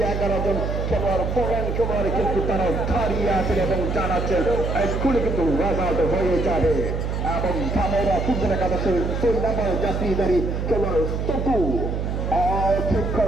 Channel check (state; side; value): noise; right; hum, 2 dB below the sound